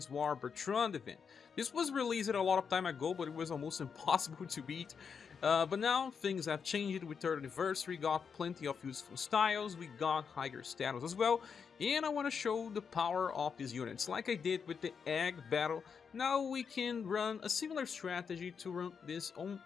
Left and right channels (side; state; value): right; quieter; 6.3 dB